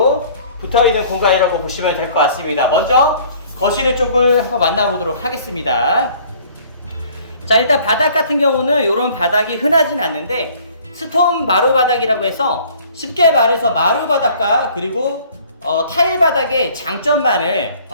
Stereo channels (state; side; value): inverted; both; correlation -0.54